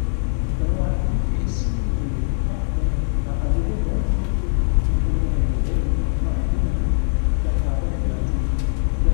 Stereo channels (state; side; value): silent; right; digital silence